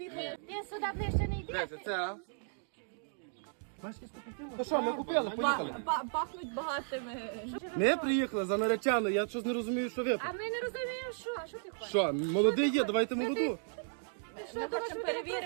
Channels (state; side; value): silent; left; digital silence